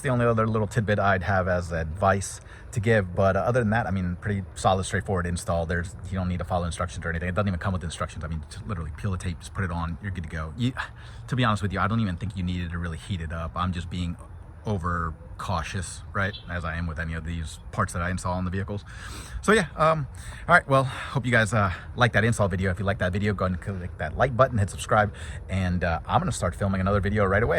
the only other little tidbit I'd have as advice to give. But other than that, I mean, pretty solid, straightforward install. You don't need to follow instructions or anything. It doesn't even come with instructions. I mean, just literally peel the tape, just put it on, you're good to go. To be honest with you, I don't even think you needed to really heat it up. I'm just being over cautious, right, as I am with any of these parts that I install on the vehicles. So yeah, all right, well, hope you guys like that install video. If you like that video, go ahead and click that like button, hit subscribe, and I'm gonna start filming another video right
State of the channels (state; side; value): identical; both; correlation 1.00